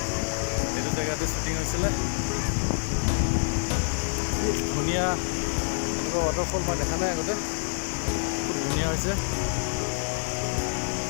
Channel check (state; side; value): silent; right; digital silence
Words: এইটো জেগাতে শ্বুটিং হৈছিলে। খুব ধুনীয়া এনেকুৱা ৱাটাৰফল মই দেখা নাই আগতে, খুব ধুনীয়া হৈছে,